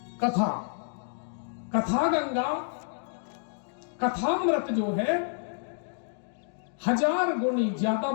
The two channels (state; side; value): silent; right; digital silence